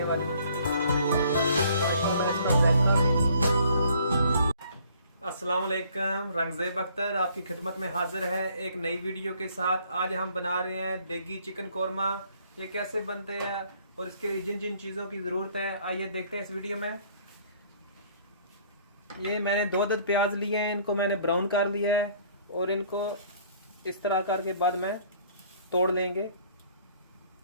वाली। अस्सलाम वालेकुम, रंगज़ेब अख्तर आपकी खिदमत में हाजिर है एक नई वीडियो के साथ। आज हम बना रहे हैं देगी चिकन कौरमा। ये कैसे बनते हैं और इसके लिए जिन जिन चीज़ों की ज़रूरत है आइए देखते हैं इस वीडियो में। ये मैंने 2 अदद प्याज लिए हैं, इनको मैंने ब्राउन कर लिया है और इनको इस तरह करके बाद में तोड़ लेंगे।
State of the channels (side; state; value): both; inverted; correlation -0.59